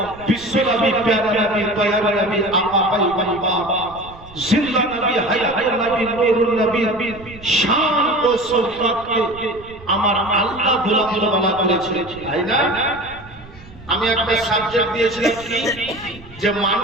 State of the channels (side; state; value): right; noise; rumble, 20 dB below the sound